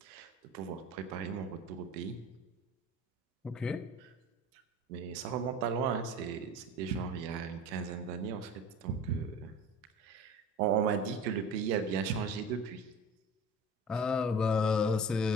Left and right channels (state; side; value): normal; both; correlation 0.38